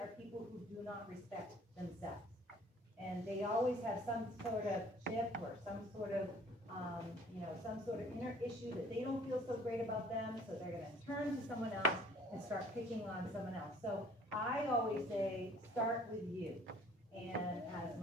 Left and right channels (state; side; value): normal; both; correlation 0.54